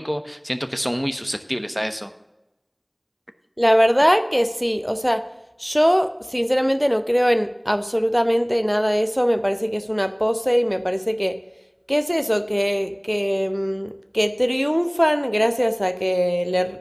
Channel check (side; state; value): both; identical; correlation 1.00